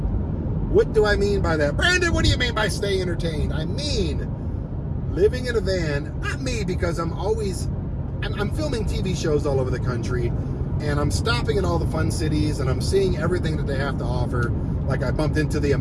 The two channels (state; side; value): identical; both; correlation 1.00